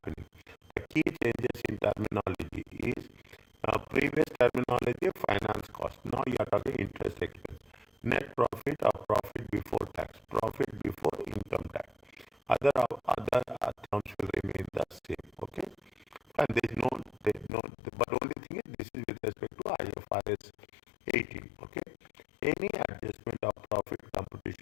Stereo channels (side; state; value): right; drops out; at 17.5 s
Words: The key changes in terminology is previous terminology finance cost. Now you are talking interest expense. Net profit or profit before tax, profit before income tax. Other terms will remain the same. Okay, and but only thing is this is with respect to IFRS 18. Okay, any adjustment of profit